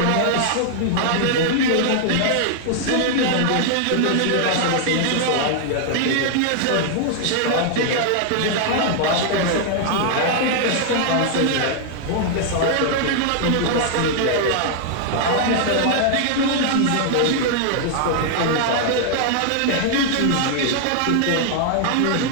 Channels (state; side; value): different; both; correlation 0.00